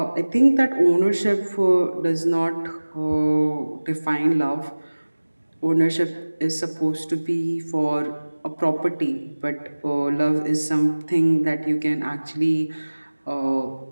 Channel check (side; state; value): both; inverted; correlation -1.00